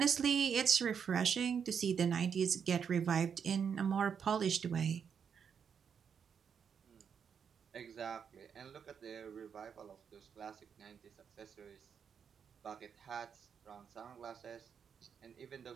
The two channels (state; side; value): quieter; left; 7.2 dB